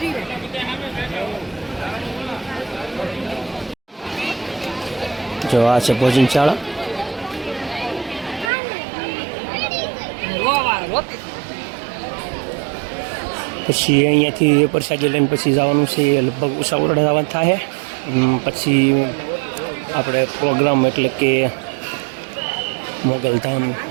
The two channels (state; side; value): drops out; left; at 8.5 s